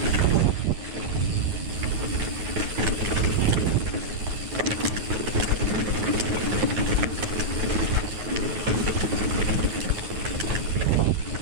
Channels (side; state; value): left; late; 9.3 ms